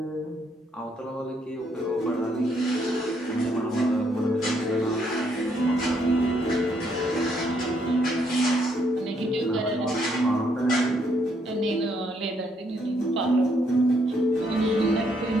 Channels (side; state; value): both; normal; correlation 0.72